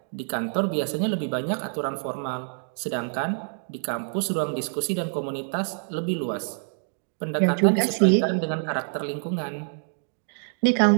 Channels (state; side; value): silent; left; 61 dB below the other